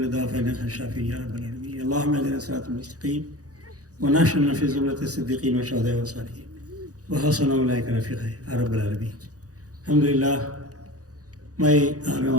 داء فإنك خير الشافين يا رب العالمين اللهم اهدنا الصراط المستقيم ونحشرنا في زمرة الصديقين والشهداء والصالحين وحسن أولئك رفيقا يا رب العالمين الحمد لله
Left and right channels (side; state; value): left; late; 0.67 ms